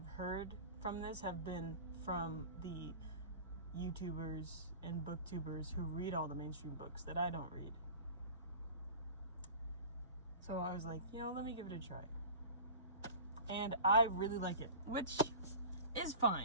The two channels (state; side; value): inverted; both; correlation -0.37